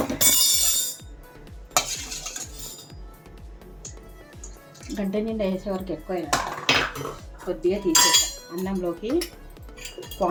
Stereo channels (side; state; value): both; identical; correlation 1.00